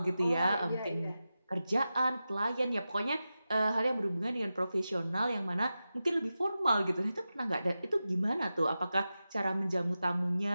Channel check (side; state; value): both; inverted; correlation -0.93